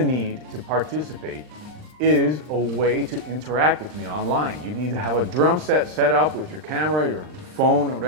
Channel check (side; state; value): left; late; 39 ms